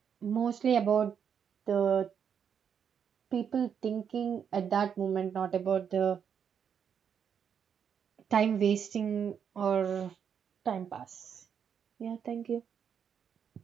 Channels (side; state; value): left; quieter; 7.7 dB